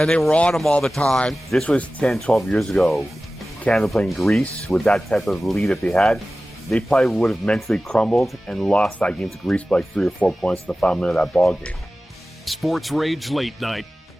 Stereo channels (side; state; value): both; normal; correlation 0.96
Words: they were on him all the time. This was 10, 12 years ago. Canada playing Greece with that type of lead that they had. They probably would have mentally crumbled and lost that game to Greece by like 3 or 4 points in the final minute of that ball game. Sports Rage Late Night.